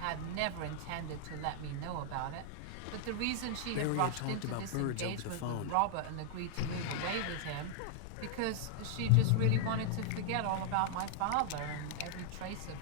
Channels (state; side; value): different; both; correlation -0.01